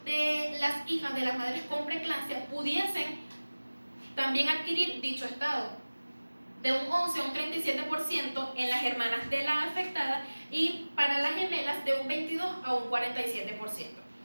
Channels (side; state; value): both; inverted; correlation -1.00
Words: de las hijas de las madres con preeclampsia pudiesen también adquirir dicho estado, de un 11 a un 37% en las hermanas de la afectada y para las gemelas de un 22 a un 47%.